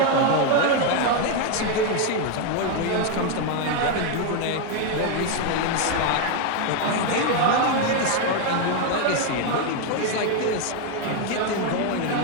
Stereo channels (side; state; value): both; different; correlation 0.01